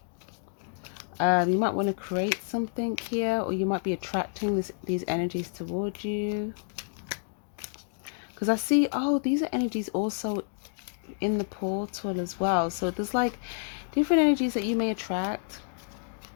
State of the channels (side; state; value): right; silent; digital silence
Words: You might want to create something here, or you might be attracting these energies towards you. Because I see, oh, these are energies also in the portal as well. So there's like different energies that you may attract.